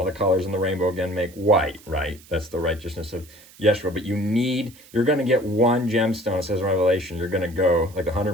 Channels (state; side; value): noise; right; hiss, 23 dB below the sound